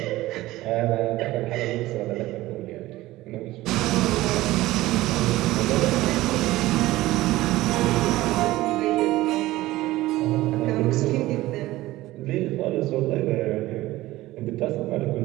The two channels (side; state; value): left; quieter; 17.4 dB